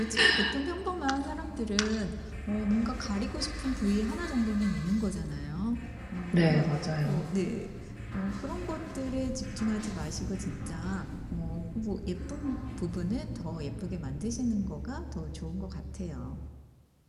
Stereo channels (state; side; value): identical; both; correlation 1.00